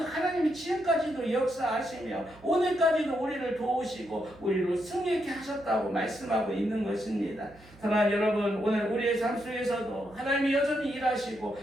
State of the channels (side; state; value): right; noise; hum, 24 dB below the sound